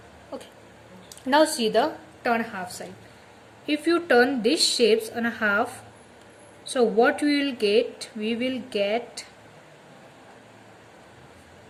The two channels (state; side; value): identical; both; correlation 1.00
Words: Okay. Now see the turn half side. If you turn these shapes on a half, so what we will get? We will get